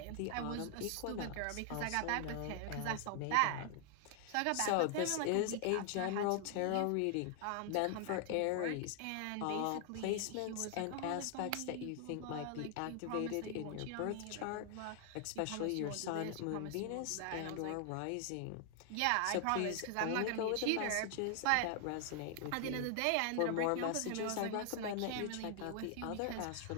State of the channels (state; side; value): different; both; correlation 0.00